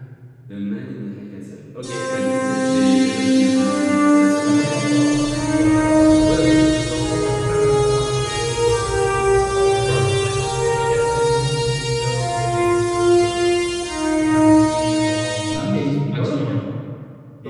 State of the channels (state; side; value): identical; both; correlation 1.00